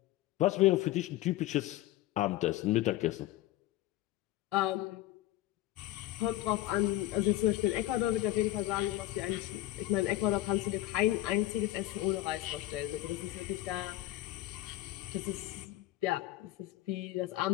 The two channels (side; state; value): right; quieter; 15.6 dB